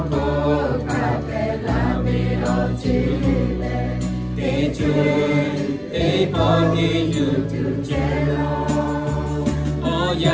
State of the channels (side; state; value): both; identical; correlation 1.00